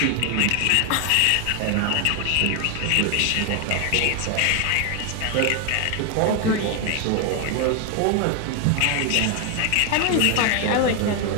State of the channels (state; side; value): different; both; correlation 0.01